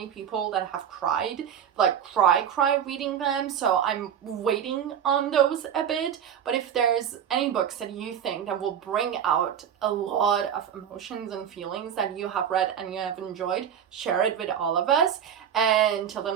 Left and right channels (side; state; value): left; quieter; 8.8 dB